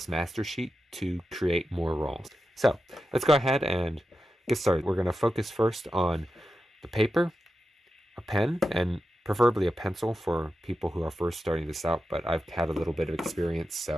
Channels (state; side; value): normal; both; correlation 0.90